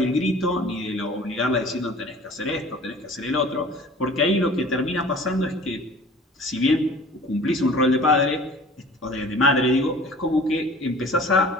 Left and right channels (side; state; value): both; normal; correlation 0.46